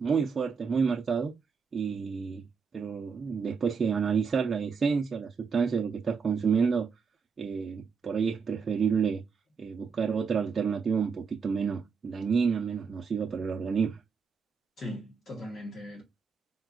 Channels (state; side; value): quieter; left; 5.7 dB